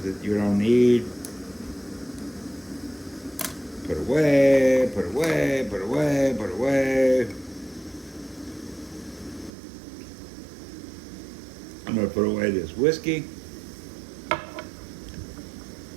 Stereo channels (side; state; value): left; drops out; at 9.5 s